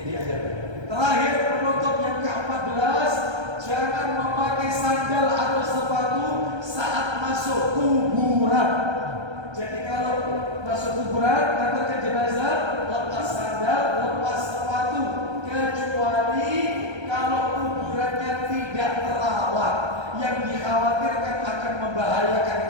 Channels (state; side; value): late; left; 1.3 ms